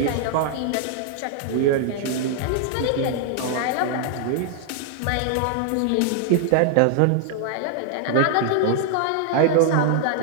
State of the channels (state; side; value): different; both; correlation 0.00